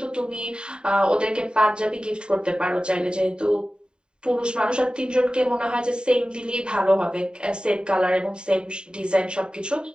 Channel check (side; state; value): left; late; 0.049 ms